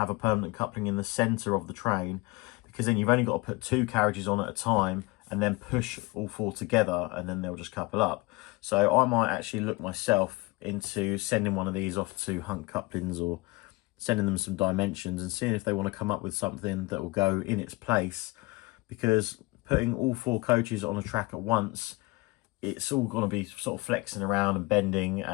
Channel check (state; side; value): quieter; right; 23.4 dB